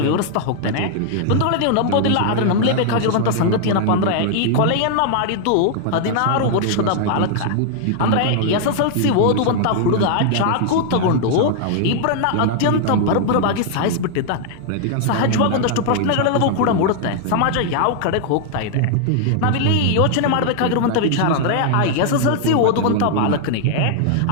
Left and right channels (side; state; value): both; different; correlation 0.00